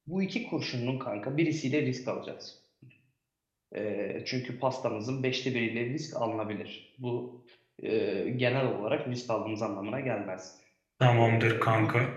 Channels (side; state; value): both; identical; correlation 1.00